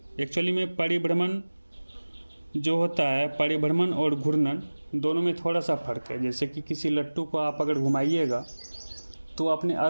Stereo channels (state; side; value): inverted; both; correlation -1.00